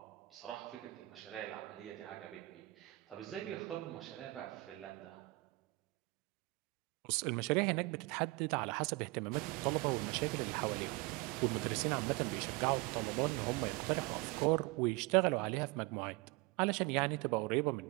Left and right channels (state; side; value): quieter; left; 22.8 dB